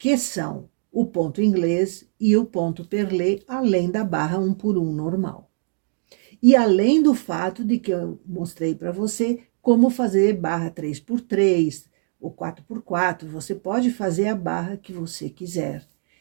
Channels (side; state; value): left; silent; digital silence